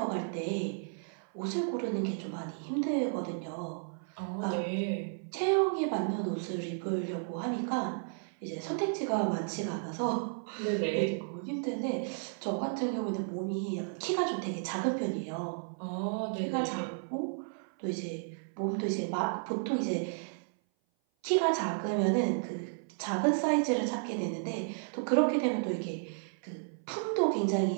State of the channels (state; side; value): silent; left; 56 dB below the other